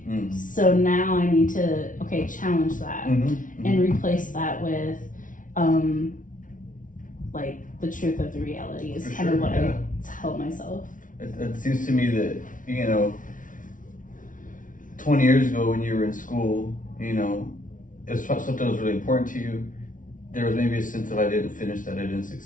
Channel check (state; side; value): late; right; 0.38 ms